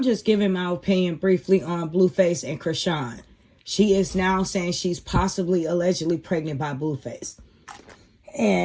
just giving my opinion briefly on Blueface and Chrisean. She is now saying she's possibly allegedly pregnant by Blueface.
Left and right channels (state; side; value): identical; both; correlation 1.00